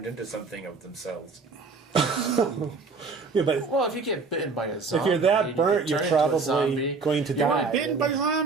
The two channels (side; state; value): left; quieter; 4.4 dB